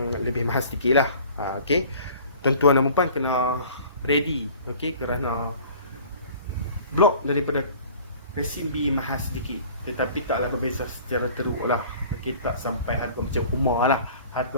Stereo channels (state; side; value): inverted; both; correlation -0.47